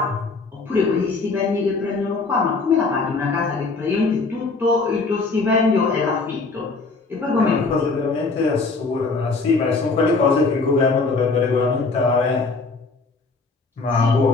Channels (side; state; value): right; quieter; 3.9 dB